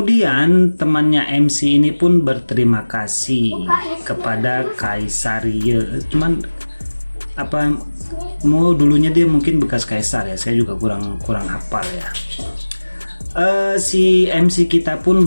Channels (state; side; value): inverted; both; correlation -1.00